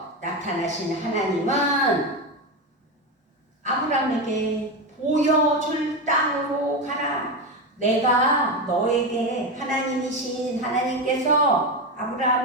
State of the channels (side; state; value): both; normal; correlation 0.15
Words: 나타나신 하나님은 아브라함에게 보여줄 땅으로 가라. 내가 너에게, 하나님이신 하나님께서